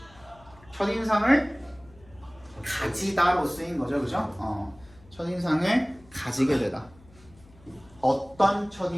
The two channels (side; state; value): left; noise; hum, 25 dB below the sound